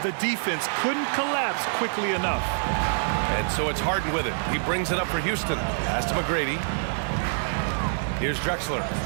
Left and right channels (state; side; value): silent; left; digital silence